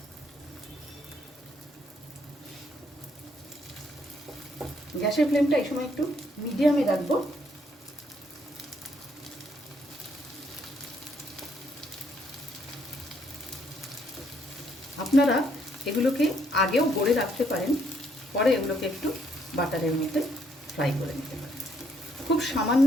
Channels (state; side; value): normal; both; correlation 0.70